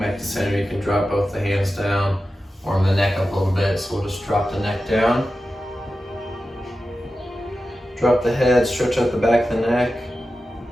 back to center, you can drop both the hands down, warm the neck up a little bit. So we'll just drop the neck down. Drop the head, stretch out the back of the neck.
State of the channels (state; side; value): normal; both; correlation 0.93